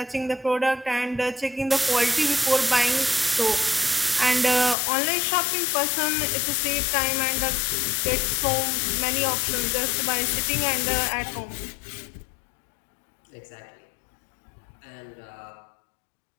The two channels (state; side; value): drops out; right; at 4.8 s